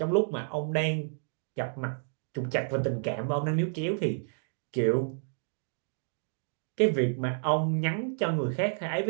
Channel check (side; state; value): left; silent; digital silence